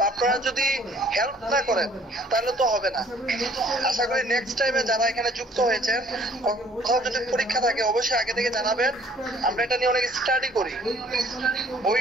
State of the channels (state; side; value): normal; both; correlation 0.57